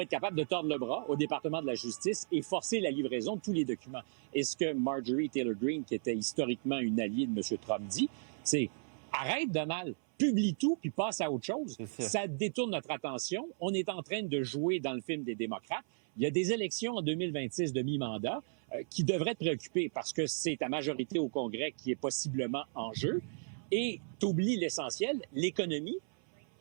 être capable de tordre le bras au département de la justice et forcer la livraison de tous les documents. Et ce que Marjorie Taylor Greene, qui était historiquement une alliée de M. Trump, dit, c'est « Arrête, Donald, publie tout, puis passe à autre chose. » Ça détourne notre attention. On est en train de jouer dans le film des démocrates. Il y a des élections en 2026 de mi-mandat qui devraient te préoccuper parce que c'est ta majorité au Congrès qui est possiblement en jeu. Et tu oublies l'essentiel, l'économie.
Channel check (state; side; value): silent; left; 54 dB below the other